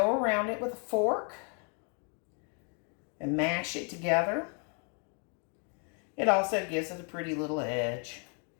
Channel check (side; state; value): right; quieter; 40.0 dB